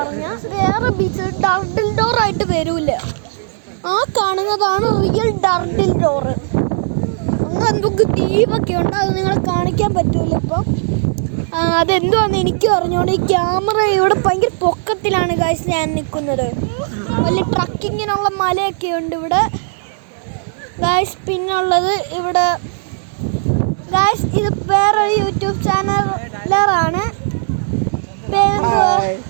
വേറെ ബീച്ച് ടർട്ടിൽ ഡോർ ആയിട്ട് വരൂല. ആ കാണുന്നതാണ് റിയൽ ടർട്ടിൽ ഡോർ. അങ്ങനെ എന്തൊക്കെ ദ്വീപൊക്കെ ഉണ്ട്, അത് നിങ്ങളെ കാണിക്കാൻ പറ്റൂല ഇപ്പം. അതെന്തുവാന്ന് എനിക്ക് പറഞ്ഞോണ്ട് ഈ ക്യാമറ ഇവിടെ ഭയങ്കര പൊക്കത്തിലാണ് ഗൈസ് ഞാൻ നിൽക്കുന്നത്. വലിയ ട്രക്കിങ്ങിനുള്ള മലയൊക്കെ ഉണ്ട് ഇവിടെ ഗൈസ്. പിന്നുള്ളത് ഇവിടെ ഗൈസ് ഇത് വേറൊരു യൂട്യൂബ് ചാനലാണ്.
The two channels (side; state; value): left; silent; 63 dB below the other